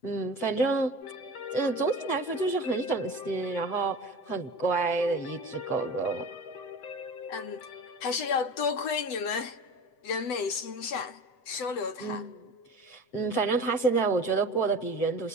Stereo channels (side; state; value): right; late; 7.9 ms